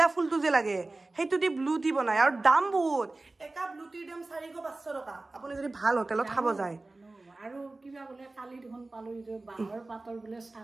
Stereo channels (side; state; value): left; quieter; 3.1 dB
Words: ফুলটো যে লাগে সেইটো দি ব্লু টি বনায় আৰু দাম বহুত এটা ব্লু টিৰ দাম 400-500 টকা আপুনি যদি ভাল হোটেলত খাব যায় আৰু কিবা বোলে কালি দেখোন পালো যে বাঁহৰ পাতৰ বোলে